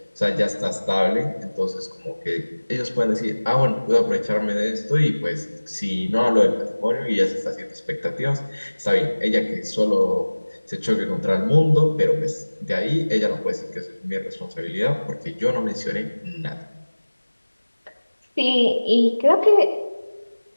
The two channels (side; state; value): both; inverted; correlation -1.00